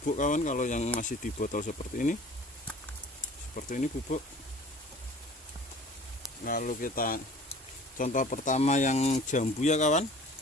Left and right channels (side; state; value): both; normal; correlation 0.47